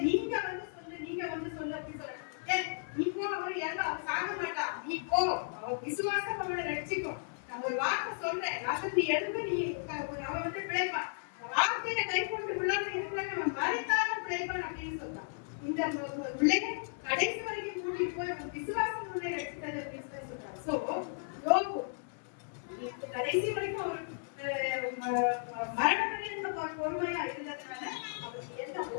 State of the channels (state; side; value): silent; right; 55 dB below the other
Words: நீங்க வந்து சொல்லு அப்படி சொல்ற நீ போ அவர் எல்லாம் சாக மாட்டான் நீ போ அவர் விசுவாசம் அவனை ரட்சிக்கும் நான் ஒரு வார்த்தை சொல்றேன் நீ எழுந்து நீ அவன் வந்து பிழைப்பான் வார்த்தையில கை கொண்டு விழாம இருக்கிறவன் அவன் மறித்தாலும் பிழைப்பான் அப்படின்னு சொல்றான் இந்த பிள்ளைங்க கடைசி வரைக்கும் கூட்டிட்டு போய் அவன் விசுவாசம் உன்னை ரட்சித்தது அப்படின்னு சொல்றான் சோ யோபு கடைசி வரைக்கும் அவர் மரணம் பொறுமையா இருந்ததுனால அவருக்கு எந்த